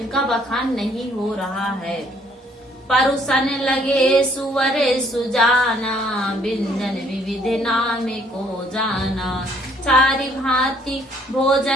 बखान नहीं हो रहा है। परुसन लगे सुवरे सुजाना, व्यंजन विविध नाम को जाना, चारि भांति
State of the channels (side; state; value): both; normal; correlation 0.64